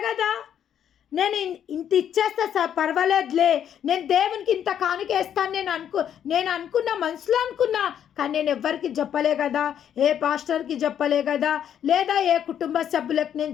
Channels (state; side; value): quieter; right; 9.4 dB